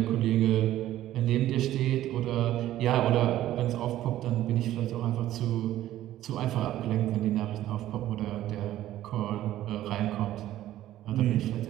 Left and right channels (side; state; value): left; quieter; 13.6 dB